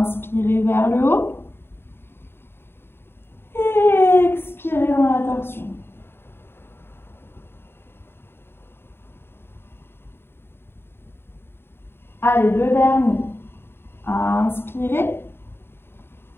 vers le haut. Et expirez dans la torsion. Allez, 2 derniers. Inspirez.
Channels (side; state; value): right; late; 0.11 ms